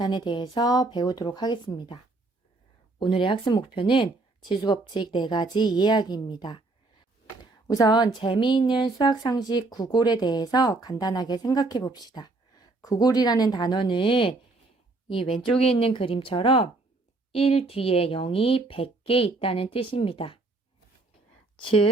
대해서 배우도록 하겠습니다. 오늘의 학습 목표는 지수법칙 4가지 이해하기입니다. 우선 재미있는 수학 상식 구골에 대해서 간단하게 생각해 봅시다. 구골이라는 단어는 이 왼쪽에 있는 그림처럼 1 뒤에 0이 100개 있다는 뜻입니다.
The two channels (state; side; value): quieter; left; 3.3 dB